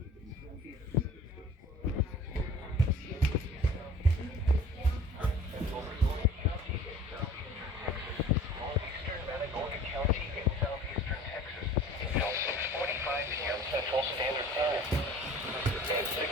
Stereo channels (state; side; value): normal; both; correlation 0.46